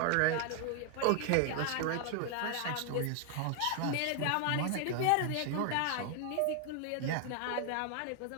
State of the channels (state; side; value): different; both; correlation 0.00